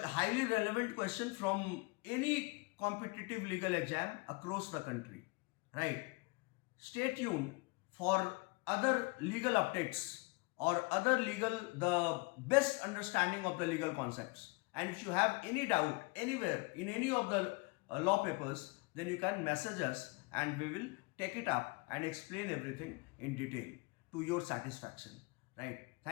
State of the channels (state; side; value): quieter; right; 28.3 dB